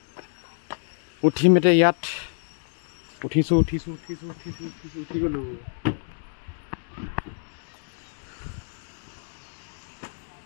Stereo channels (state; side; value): silent; right; digital silence